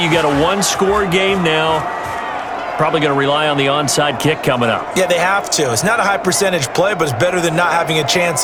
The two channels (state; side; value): identical; both; correlation 1.00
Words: You got a 1-score game now. Probably going to rely on the onside kick coming up. Yeah, they have to. It's not a high percentage play, but it's better than not having a chance